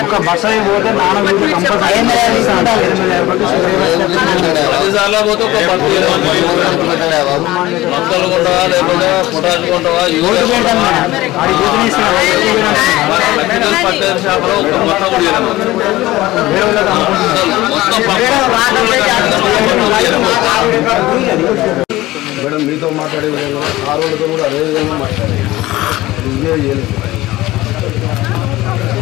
మేడం మీతో మాట్లాడే విధంగా ఆ రోజుతో కూడా అదే విధంగా మాట్లాడాలి.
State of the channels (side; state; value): right; quieter; 17.7 dB